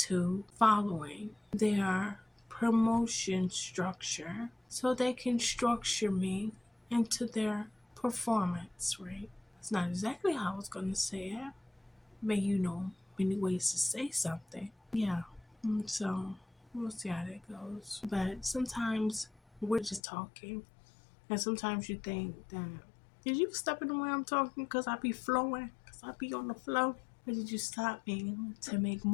following their promotion structure, so they can structure me into their performance, right? It's not exactly how I was going to say it, but many ways to say something. Yeah. So we'll see how that goes. But sometimes we're just talking, and sometimes you think that, did you step in the way I'm talking because I be flowing, because I be on the flow? Or did you stop me to make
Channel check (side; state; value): right; drops out; at 20.0 s